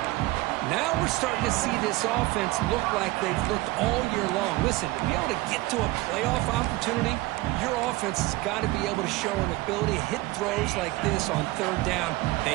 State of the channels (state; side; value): quieter; left; 19.9 dB